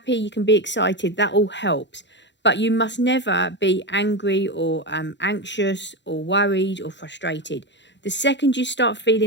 you can be excited, that all helps. But you must never be angry or anxious or worried or frustrated. The second you start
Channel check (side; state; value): right; late; 0.52 ms